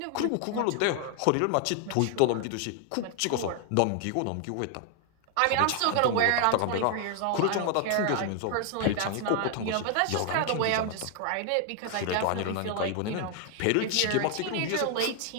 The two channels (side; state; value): both; different; correlation 0.00